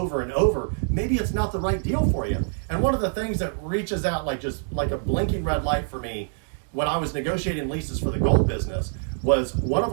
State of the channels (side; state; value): left; silent; 58 dB below the other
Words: and over. Maybe it's not the right deal for you. And one of the things that reaches out like just like a blinking red light for me when I was negotiating leases for the gold business was one of